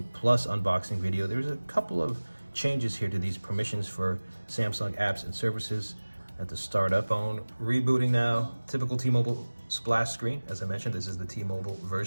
Plus unboxing video, there's a couple of changes here to these permissions for Samsung apps and services. At the startup phone, rebooting now, typical T-Mobile splash screen. As I mentioned, this is the T-Mobile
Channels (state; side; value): inverted; both; correlation -1.00